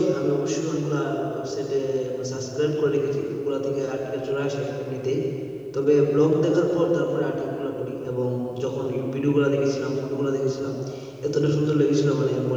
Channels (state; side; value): identical; both; correlation 1.00